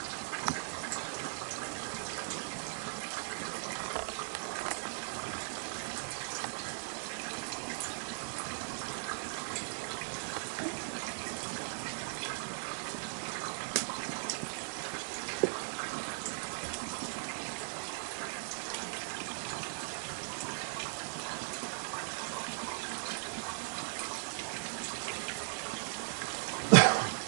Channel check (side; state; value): left; silent; digital silence